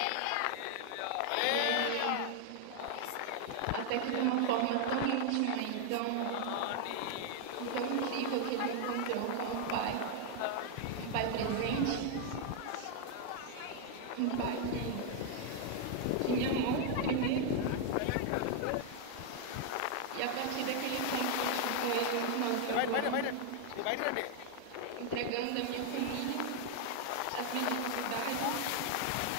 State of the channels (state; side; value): different; both; correlation 0.00